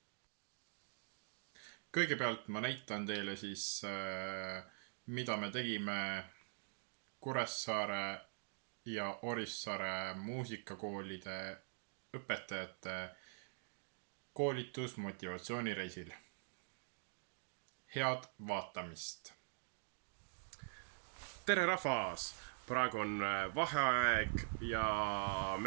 Kõigepealt ma näitan teile siis, mida me tegime Kuressaare ja Orissaare muusikakoolide õpetajate koolitusmotivatsioonireisil. Head vaatamist! Tere rahvas! Praegu on vaheaeg ja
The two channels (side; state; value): left; silent; digital silence